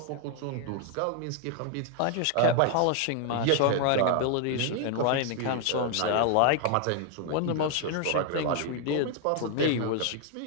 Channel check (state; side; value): different; both; correlation 0.00